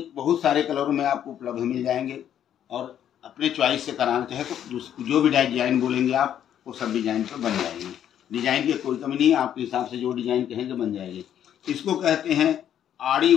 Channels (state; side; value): quieter; right; 10.1 dB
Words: बहुत सारे कलरों में आपको उपलब्ध मिल जाएंगे। और अपने चॉइस से कराना चाहे तो जो भी डिजाइन बोलेंगे आप, वो सब डिजाइन पर बन जाएंगे। डिजाइन की कोई कमी नहीं है, आपके हिसाब से जो डिजाइन कहेंगे बन जाएगी। इसको कहते हैं आड़ी